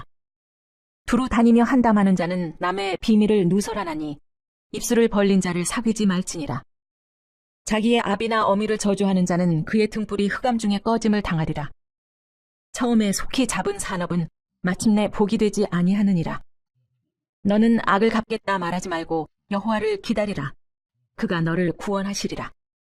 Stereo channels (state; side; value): identical; both; correlation 1.00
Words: 두루 다니며 한담하는 자는 남의 비밀을 누설하나니 입술을 벌린 자를 사귀지 말지니라. 자기의 아비나 어미를 저주하는 자는 그의 등불이 흑암 중에 꺼짐을 당하리라. 처음에 속히 잡은 산업은 마침내 복이 되지 아니하느니라. 너는 악을 갚겠다 말하지 말고 여호와를 기다리라. 그가 너를 구원하시리라.